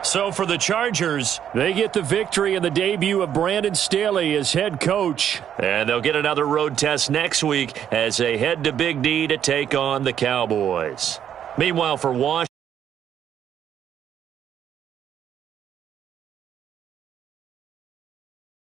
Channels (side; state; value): left; quieter; 9.5 dB